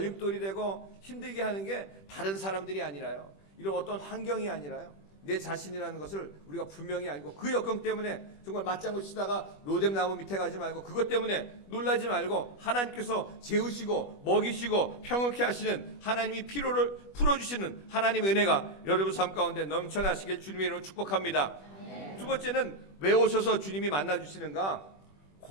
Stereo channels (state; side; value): late; right; 21 ms